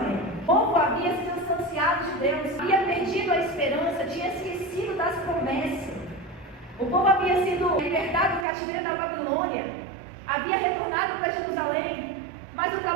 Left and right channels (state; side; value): drops out; left; at 8.5 s